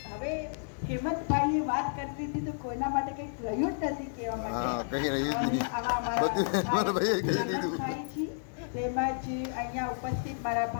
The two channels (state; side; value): silent; right; digital silence